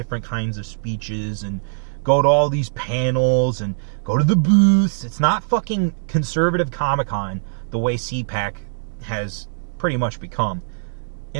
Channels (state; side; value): silent; left; digital silence